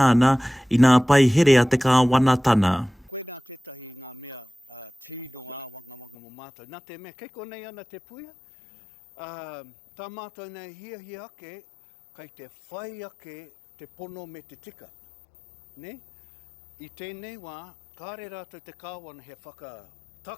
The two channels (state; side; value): drops out; right; at 6.2 s